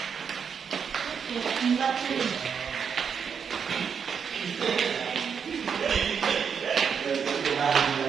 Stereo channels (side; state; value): left; quieter; 6.8 dB